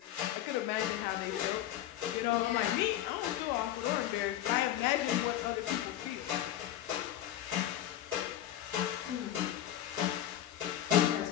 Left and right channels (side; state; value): right; quieter; 12.3 dB